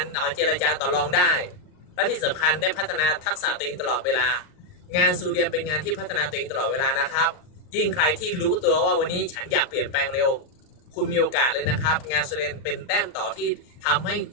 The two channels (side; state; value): right; late; 39 ms